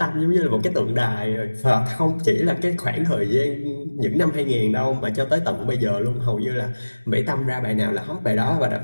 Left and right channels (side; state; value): both; inverted; correlation -1.00